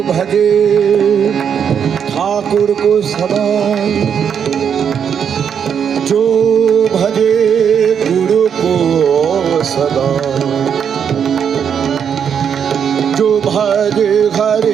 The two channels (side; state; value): left; quieter; 7.7 dB